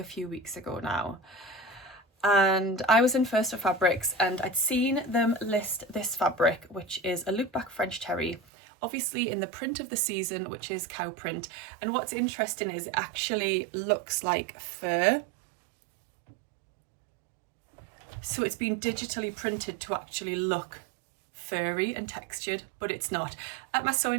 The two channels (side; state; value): left; drops out; at 8.4 s